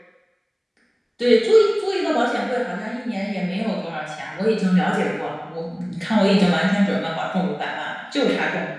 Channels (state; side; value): identical; both; correlation 1.00